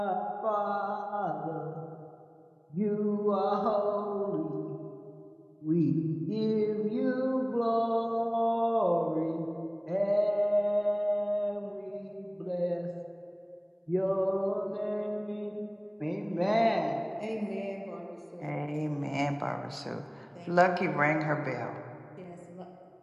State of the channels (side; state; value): both; identical; correlation 1.00